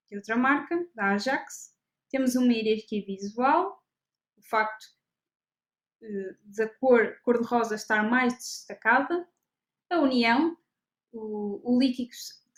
de outra marca, da Ajax, temos uma hierarquia visual, o facto da cor cor-de-rosa estar mais destacada, a união, o líquido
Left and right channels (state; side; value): identical; both; correlation 1.00